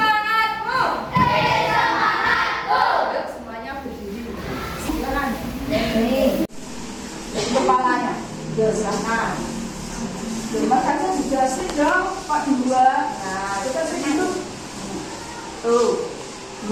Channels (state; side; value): identical; both; correlation 1.00